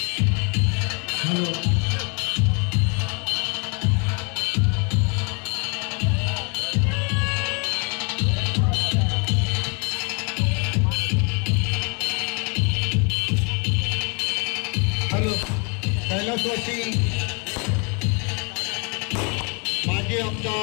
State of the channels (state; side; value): quieter; right; 34.4 dB